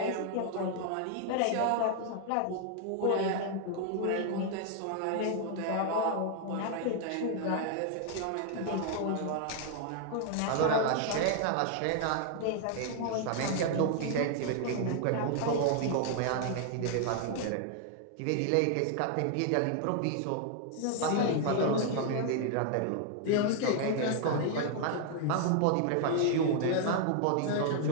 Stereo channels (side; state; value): both; different; correlation 0.00